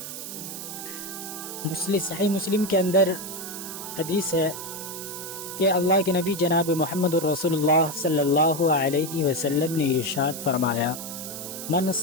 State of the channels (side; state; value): right; noise; hiss, 9 dB below the sound